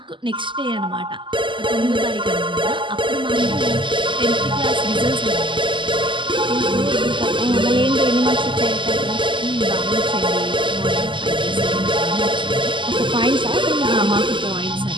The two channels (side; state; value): left; late; 0.24 ms